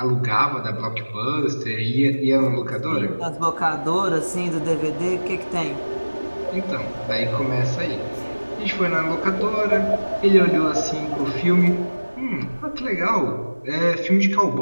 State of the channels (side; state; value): both; inverted; correlation -1.00